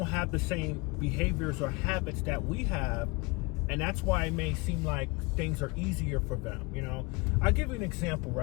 have the same behaviors or habits that we have, and that's why it may seem like things are easier for them. I'll give you an example,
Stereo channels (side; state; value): right; quieter; 26.6 dB